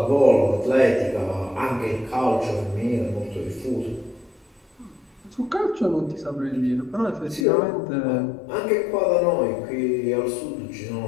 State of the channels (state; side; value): drops out; right; at 7.5 s